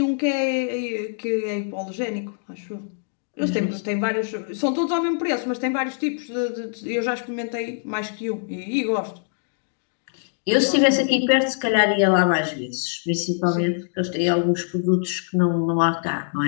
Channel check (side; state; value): right; silent; digital silence